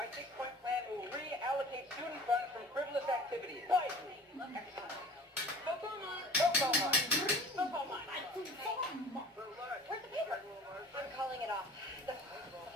6-point plan will reallocate student funds from frivolous activities. Wisely. Where's the paper? I'm calling it off. The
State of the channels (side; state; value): both; normal; correlation 0.43